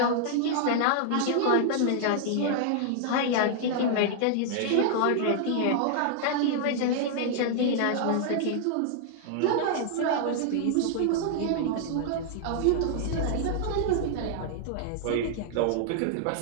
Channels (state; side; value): different; both; correlation -0.01